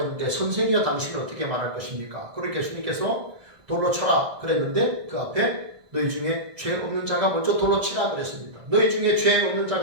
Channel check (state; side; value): late; left; 1.7 ms